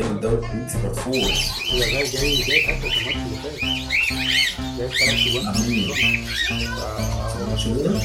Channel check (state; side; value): identical; both; correlation 1.00